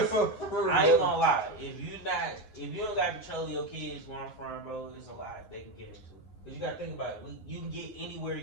ain't gonna lie. If you don't got control of your kids where I'm from, bro, it's a lot they can get into. Cause you gotta think about it. You can get anywhere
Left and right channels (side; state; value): right; late; 9.5 ms